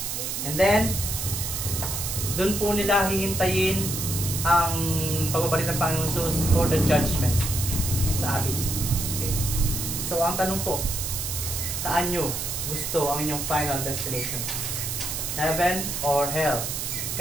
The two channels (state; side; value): noise; right; hiss, 3 dB below the sound